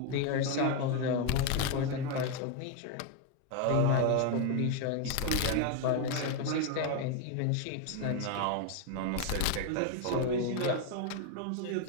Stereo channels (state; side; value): different; both; correlation 0.01